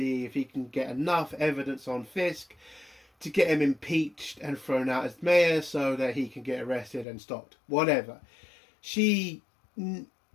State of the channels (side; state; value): right; drops out; at 7.1 s